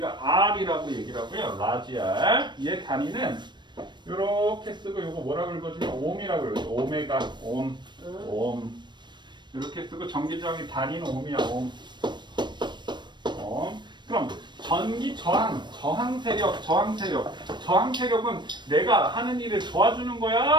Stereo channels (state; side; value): late; left; 0.22 ms